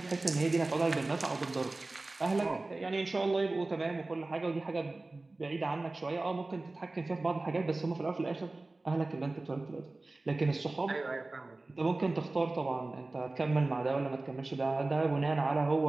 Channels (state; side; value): quieter; left; 3.1 dB